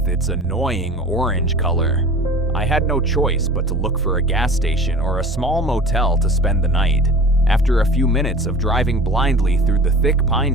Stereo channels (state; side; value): normal; both; correlation 0.40